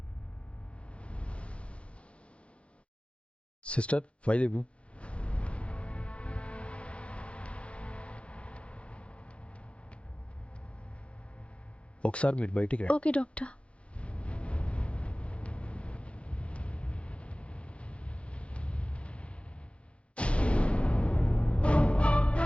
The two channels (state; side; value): late; right; 0.060 ms